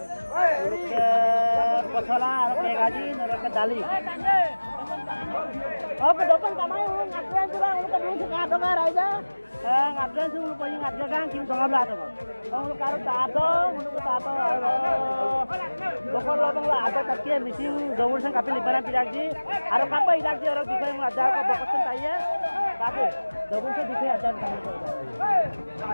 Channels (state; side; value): inverted; both; correlation -1.00